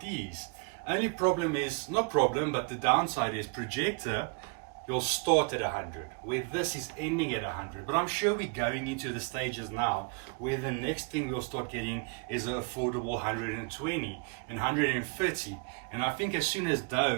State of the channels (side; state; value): left; quieter; 33.1 dB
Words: these. Only problem is, not problem, but the downside is projector, you'll start at 100, where this is ending at 100. But I'm sure we're going into the stages now where the next thing we'll start getting is an affordable 120 and 130. And I think as soon as